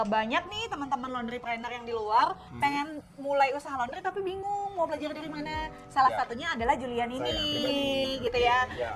banyak nih teman-teman laundrypreneur yang di luar pengen mulai usaha laundry tapi bingung mau belajar dari mana. Salah Ya. satunya adalah Julian ini pribadi. gitu ya. Ya.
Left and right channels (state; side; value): identical; both; correlation 1.00